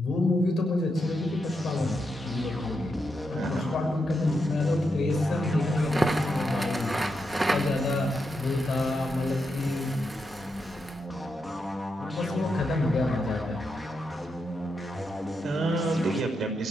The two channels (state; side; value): normal; both; correlation 0.84